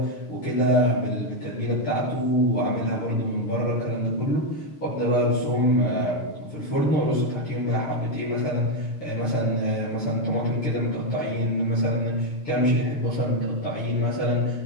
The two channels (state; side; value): late; right; 6.7 ms